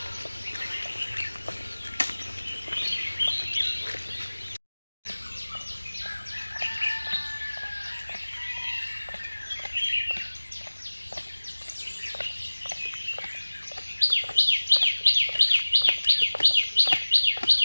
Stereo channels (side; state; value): both; inverted; correlation -1.00